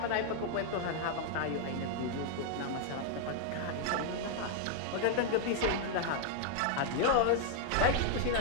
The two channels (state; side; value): different; both; correlation 0.00